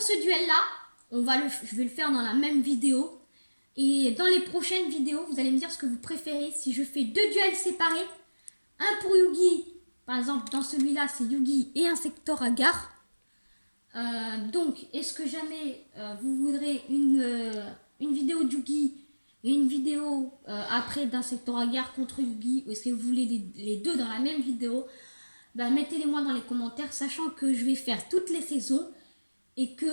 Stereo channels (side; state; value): both; inverted; correlation -1.00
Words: ce duel-là, je vais le faire dans la même vidéo. Et dans les prochaines vidéos, vous allez me dire ce que vous préférez. Si je fais 2 duels séparés, un pour Yugi, par exemple, dans celui-là, c'est Yugi et un secteur à gare. Donc, est-ce que jamais vous voudrez une vidéo de Yugi et une vidéo après d'un secteur à gare contre Yugi, ou est-ce que vous voulez les deux dans la même vidéo? Mettez-les moi dans les commentaires, sachant que je vais faire toutes les saisons et